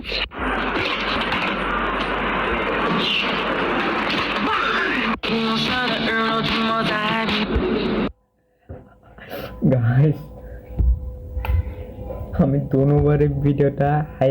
操গাইস, আমি দুবারের ভিডিওটা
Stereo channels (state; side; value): identical; both; correlation 1.00